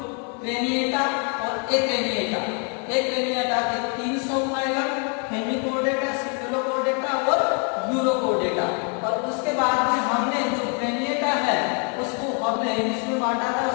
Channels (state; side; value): quieter; right; 36.1 dB